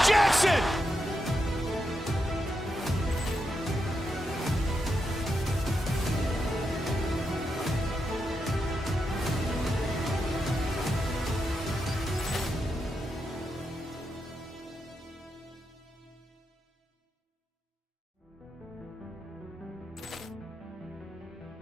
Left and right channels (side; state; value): both; normal; correlation 0.85